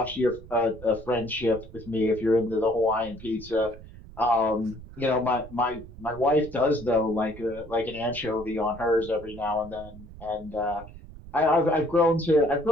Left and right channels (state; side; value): noise; right; rumble, 17 dB below the sound